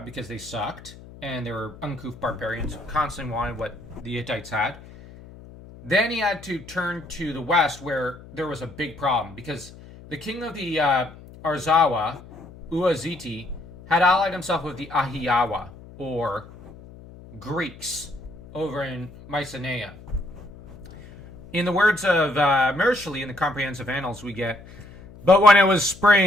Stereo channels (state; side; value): noise; left; hum, 19 dB below the sound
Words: because they sucked and they were uncouth barbarians who constantly wanted what the Hittites had. Then he had to turn to the west where there was a big problem because the king of the Arzawa, Uaziti, had allied himself with the Ahiyawa, or Greeks, over in Mycenae. In the words of Mursili in the Comprehensive Annals, we get, "But when it was